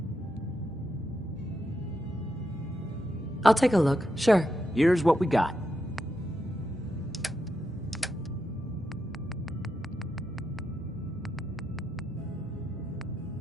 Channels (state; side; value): normal; both; correlation 0.84